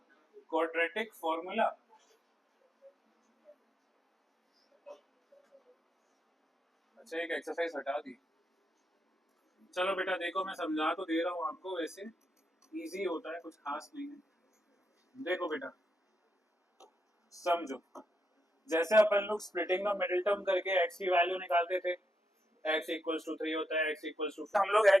क्वाड्रेटिक फॉर्मूला। अच्छा एक एक्सरसाइज हटा दी। चलो बेटा देखो मैं समझा तो दे रहा हूँ आपको, वैसे इजी होता है, कुछ खास नहीं है। देखो बेटा समझो, जैसे अपन लोग स्प्लिटिंग द मिडिल टर्म करके x की वैल्यू निकालते थे, x इक्वल्स टू 3 होता है, x इक्वल्स टू, हम लोग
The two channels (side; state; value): both; normal; correlation 0.83